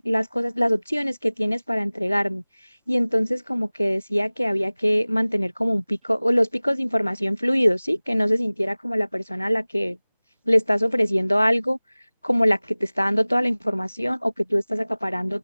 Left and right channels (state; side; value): inverted; both; correlation -1.00